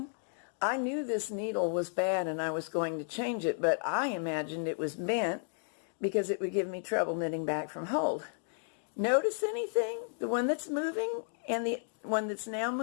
I knew this needle was bad and I was going to change it, but I imagined it was bent because it would give me trouble knitting back from hold. Notice anything? The one that's moving and the one that's now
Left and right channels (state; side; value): silent; right; digital silence